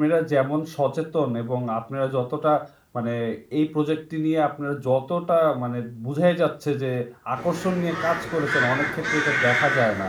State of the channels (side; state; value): both; identical; correlation 1.00